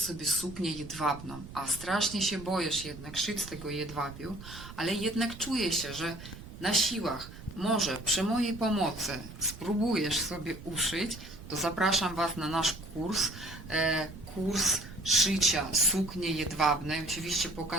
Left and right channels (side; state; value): right; noise; rumble, 14 dB below the sound